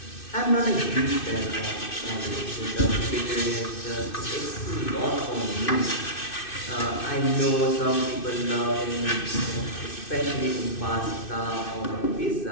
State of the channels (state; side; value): late; right; 2.6 ms